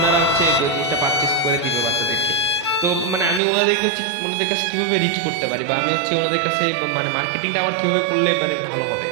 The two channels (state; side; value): drops out; left; at 3.4 s